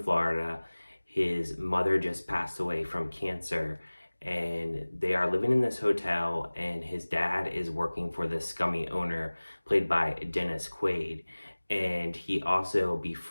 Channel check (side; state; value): both; inverted; correlation -1.00